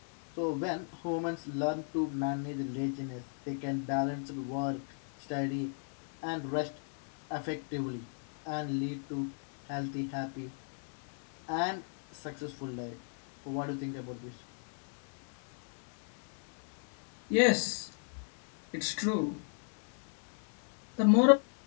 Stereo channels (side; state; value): right; silent; 54 dB below the other